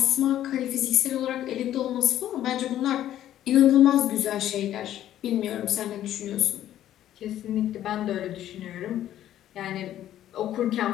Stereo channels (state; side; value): quieter; right; 12.1 dB